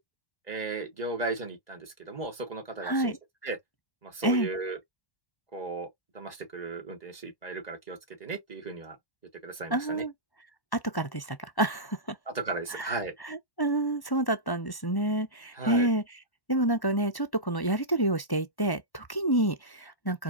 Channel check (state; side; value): late; right; 1.1 ms